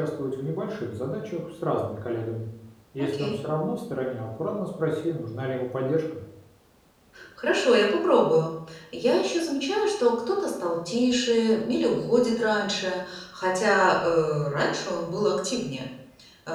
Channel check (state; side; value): identical; both; correlation 1.00